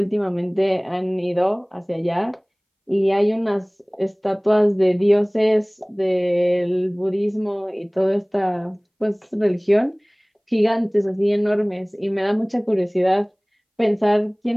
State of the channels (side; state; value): both; identical; correlation 1.00